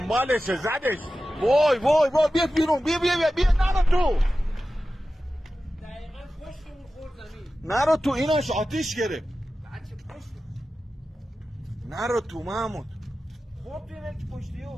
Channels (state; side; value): normal; both; correlation 0.94